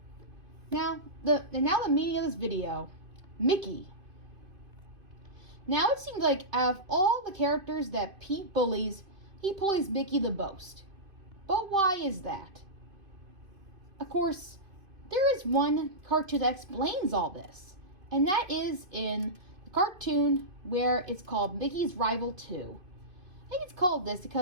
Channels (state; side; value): late; left; 2.5 ms